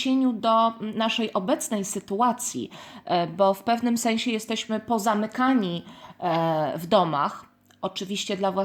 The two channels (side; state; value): both; identical; correlation 1.00